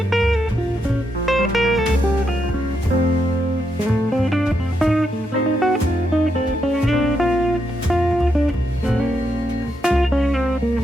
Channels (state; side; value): normal; both; correlation 0.81